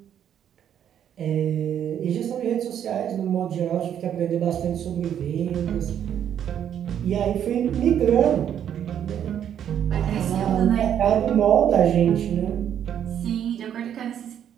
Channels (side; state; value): left; quieter; 9.5 dB